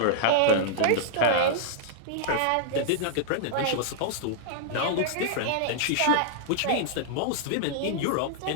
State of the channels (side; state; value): both; different; correlation -0.01